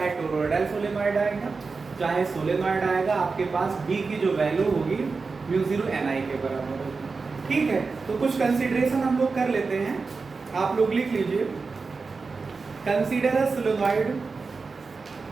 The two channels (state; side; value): quieter; left; 4.4 dB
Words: टोरॉइडल सोलेनॉइड आएगा चाहे सोलेनॉइड आएगा, आपके पास B की जो वैल्यू होगी म्यू 0 ni के बराबर होगी। ठीक है, तो कुछ कंसीडरेशन हम लोग कर लेते हैं, आप लोग लिख लीजिए। Consider a solenoid,